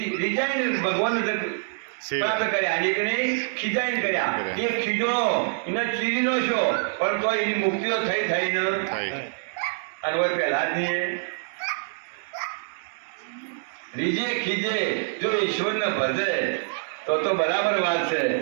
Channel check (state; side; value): silent; left; digital silence